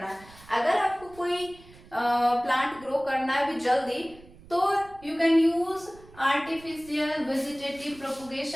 है। अगर आपको कोई प्लांट ग्रो करना है भी जल्दी तो you can use artificial vegetative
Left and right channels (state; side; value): noise; right; rumble, 22 dB below the sound